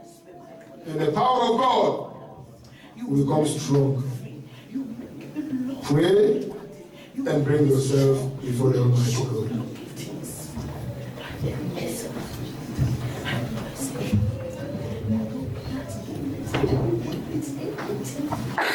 and the power of God will become strong. Pray and bring yourself before the Almighty God.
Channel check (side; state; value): both; identical; correlation 1.00